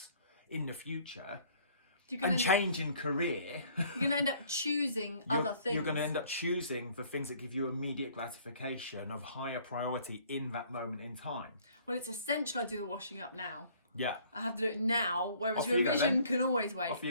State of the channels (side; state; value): both; inverted; correlation -0.58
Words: in the future, and changing career, you're going to end up choosing other things. You're going to end up choosing the things that give you immediate gratification of higher priority in that moment in time. Well, it's essential I do the washing up now. Yeah. I have to do it now, whereas revision can always wait. Off